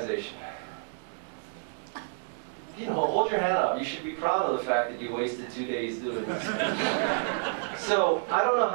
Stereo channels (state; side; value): silent; left; digital silence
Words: You know, hold your hand up. You should be proud of the fact that you wasted 2 days doing this. So, I don't know